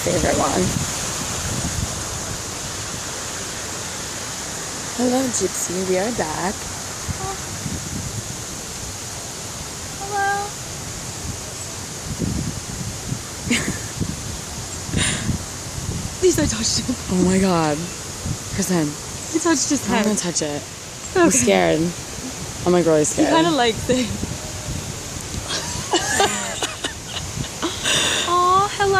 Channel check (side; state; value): both; identical; correlation 1.00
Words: one. Hello, Gypsy. We are back. Oh. Hello. At least I touched him. Oh my god. Kristen. You touched his head. I'm gonna touch it. Okay. I'm scared. I'm like really scared. He kind of likes it. Aw,